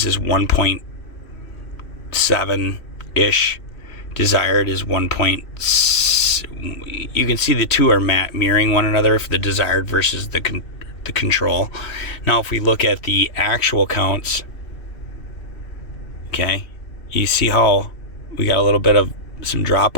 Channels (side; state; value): right; late; 3.1 ms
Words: is 1.7-ish. Desired is 1.6. You can see the two are mirroring one another for the desired versus the control. Now if we look at the actual counts, okay, you see how we got a little bit of some